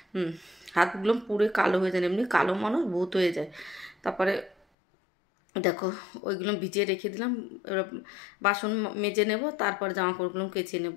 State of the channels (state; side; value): drops out; right; at 4.5 s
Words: হাতগুলো পুরো কালো হয়ে যায়, এমনি কালো মানুষ ভূত হয়ে যায়। তারপরে দেখো ওইগুলো ভিজিয়ে রেখে দিলাম। এবার বাসন মেজে নেব, তারপর জামা কাপড়গুলো কেচে নেব।